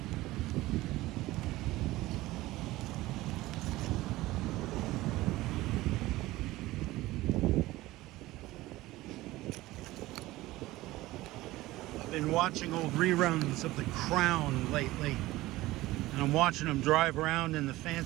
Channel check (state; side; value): quieter; left; 17.9 dB